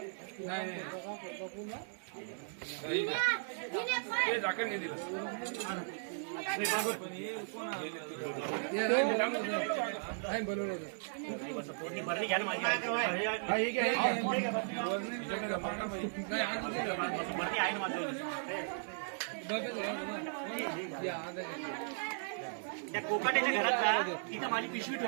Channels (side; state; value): left; silent; digital silence